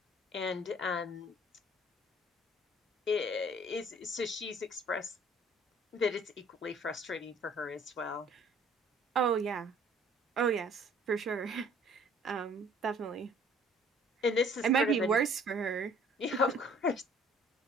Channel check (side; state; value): both; normal; correlation 0.55